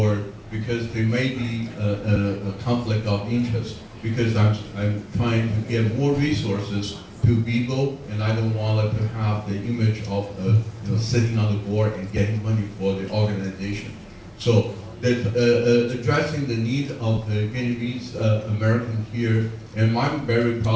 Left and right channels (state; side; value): identical; both; correlation 1.00